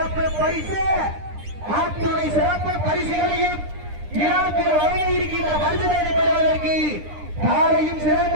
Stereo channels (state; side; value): late; left; 9.9 ms